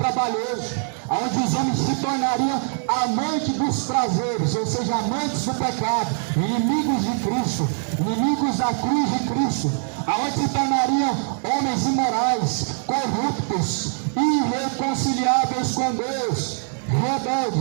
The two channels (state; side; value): silent; left; 58 dB below the other